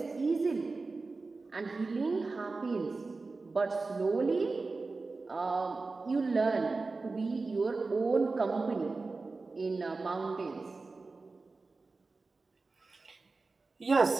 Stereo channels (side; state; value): left; quieter; 3.8 dB